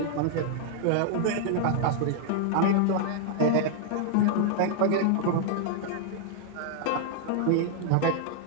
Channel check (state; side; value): different; both; correlation -0.01